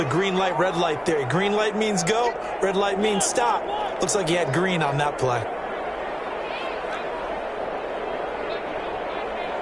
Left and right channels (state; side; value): identical; both; correlation 1.00